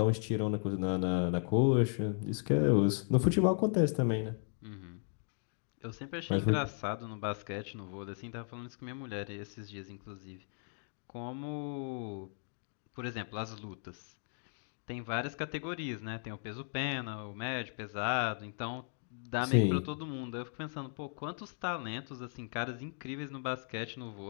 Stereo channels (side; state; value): right; silent; 54 dB below the other